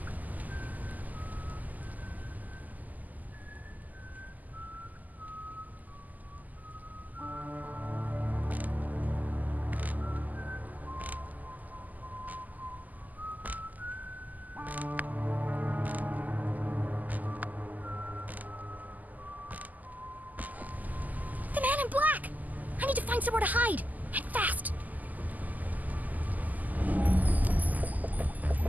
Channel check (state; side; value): late; left; 0.081 ms